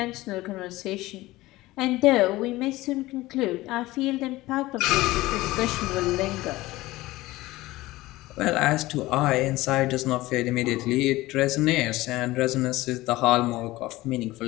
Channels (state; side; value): quieter; right; 18.5 dB